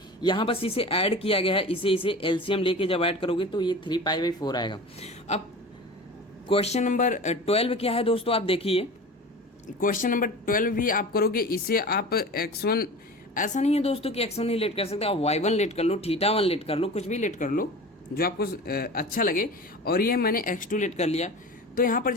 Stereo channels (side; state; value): both; normal; correlation 0.35